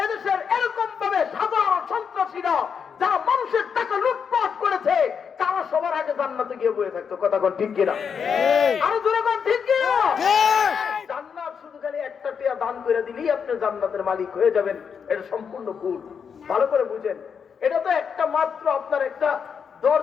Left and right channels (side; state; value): right; quieter; 6.7 dB